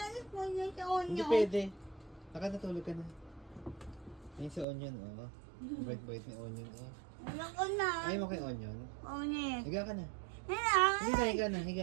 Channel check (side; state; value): left; drops out; at 4.7 s